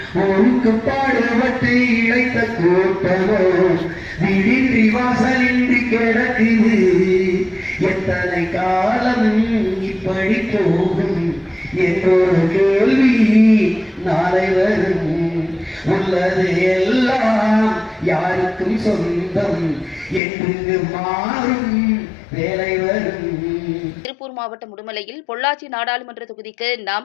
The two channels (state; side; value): drops out; right; at 20.2 s